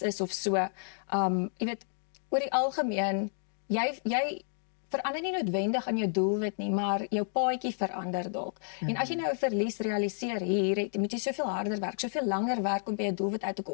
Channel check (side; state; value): right; silent; digital silence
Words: is of so, jy weet, oor die algemeen, jy verander nie noodwendig aan jou doelwit nie, maar jou paadjie verander dalk. En as jy nou 'n verlies realiseer hier, moet jy soveel harder werk, soveel langer werk om by jou doelwit uit te